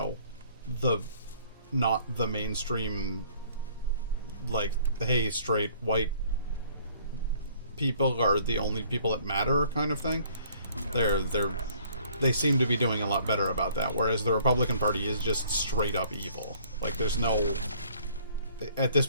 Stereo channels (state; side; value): inverted; both; correlation -0.58